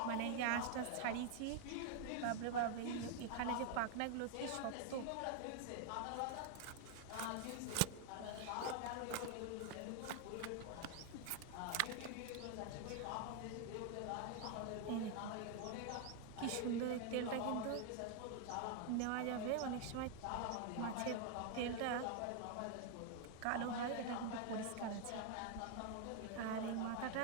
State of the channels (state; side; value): different; both; correlation 0.00